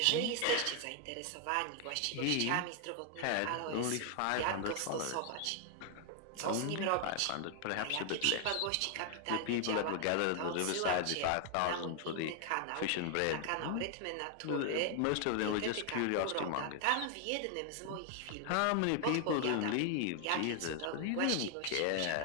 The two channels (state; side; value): different; both; correlation 0.00